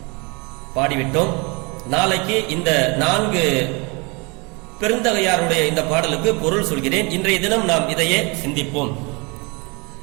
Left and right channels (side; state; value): left; quieter; 29.1 dB